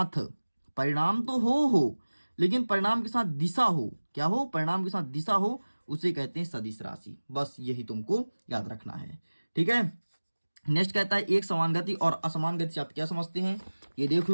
परिणाम तो हो लेकिन परिणाम के साथ दिशा हो, क्या हो? परिणाम के साथ दिशा हो, उसे कहते हैं सदिश राशि। बस यही तुमको याद रखना है। ठीक है, नेक्स्ट कहता है एक समान गति और असमान गति आप क्या समझते हैं? ये देख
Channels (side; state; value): both; inverted; correlation -1.00